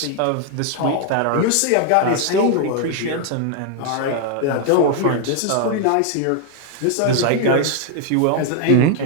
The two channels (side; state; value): both; different; correlation 0.00